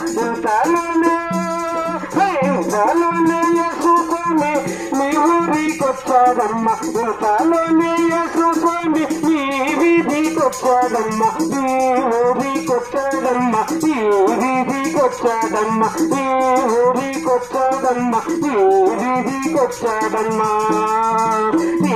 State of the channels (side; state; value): left; noise; rumble, 27 dB below the sound